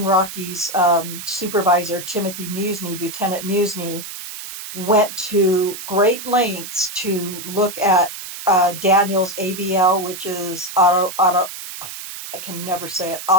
Rocky's supervisor, Timothy Musney, Lieutenant Musney, went to great lengths to look at Daniel's AVL, which is I can never say it,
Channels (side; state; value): right; noise; hiss, 10 dB below the sound